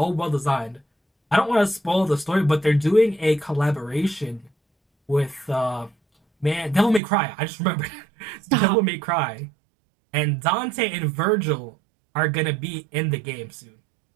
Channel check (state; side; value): drops out; left; at 7.0 s